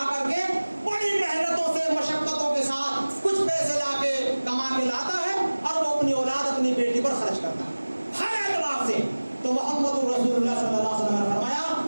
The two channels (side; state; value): both; inverted; correlation -1.00